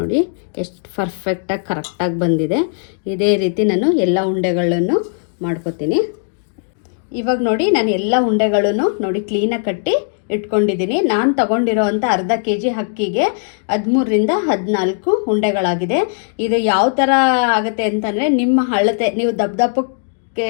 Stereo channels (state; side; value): silent; right; digital silence